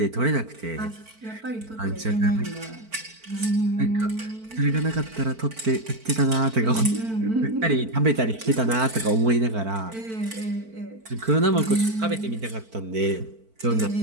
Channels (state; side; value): late; left; 4.5 ms